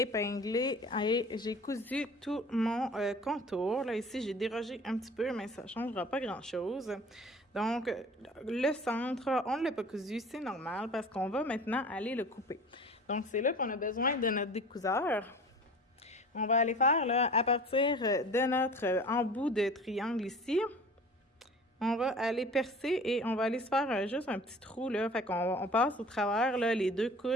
épinglé et j'ai cousu tout mon contour. Là, ici, j'ai dérogé un petit peu, mais ça ne changera pas grand-chose. Donc, le centre, on ne l'a pas cousu, c'est normal parce qu'on va maintenant aller le couper. Donc, c'est là qu'on a besoin de notre découseur. On va aller faire, là, à partir de notre embout de triangle ici, on va aller percer et on va aller se faire juste un petit trou, là. Fait qu'on passe au travers, là, les deux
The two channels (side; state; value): both; normal; correlation 0.42